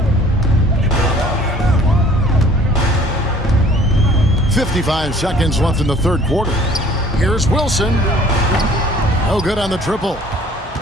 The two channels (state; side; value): normal; both; correlation 0.53